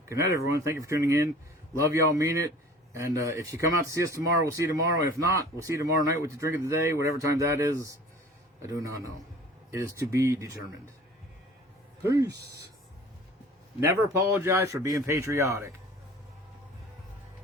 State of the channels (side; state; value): both; normal; correlation 0.45